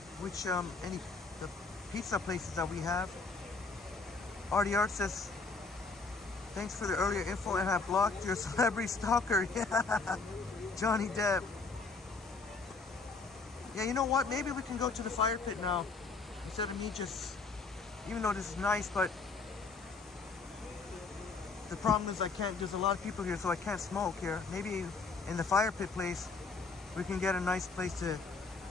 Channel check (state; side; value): quieter; right; 4.1 dB